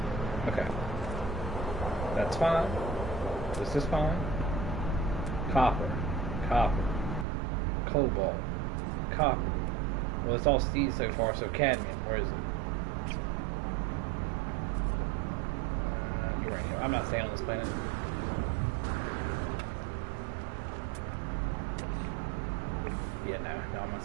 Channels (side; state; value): left; drops out; at 7.2 s